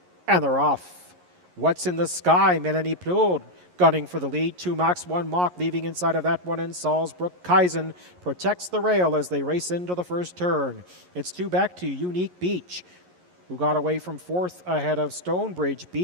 And they're off. What's in the Sky? Melanie Plourde gunning for the lead. 2 max, 1 mock, leaving inside of that one in Salzburg-Kaisen. Protects the rail as they race into the first turn. It's 2 back to Unique Beach, who got away from 4th ahead of Stonebridge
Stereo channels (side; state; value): left; late; 11 ms